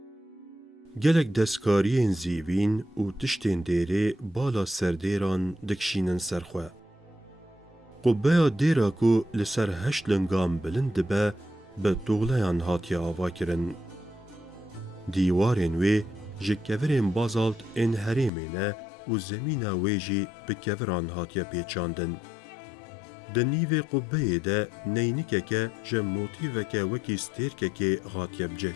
گلک دستکارین زیوین و تشتین دیره بالا سردیران دکشینن سرخواه. قبه دیرا کو لسر هشت لنگام بلند به دوغلیان هاتیا آوا کرن. دیوارین وی جکورین بازالت این هریمینه و زمین ویجی به کوران هاتیا پیچاندن. دنیو قبه ده نینکه که جموتیوه که وکی ستیرکه که هاتیا بجه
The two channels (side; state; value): right; drops out; at 18.3 s